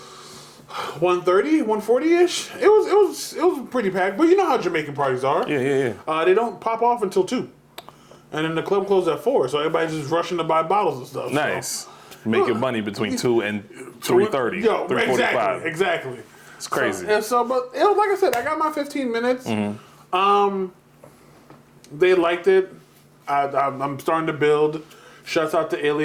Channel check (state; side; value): identical; both; correlation 1.00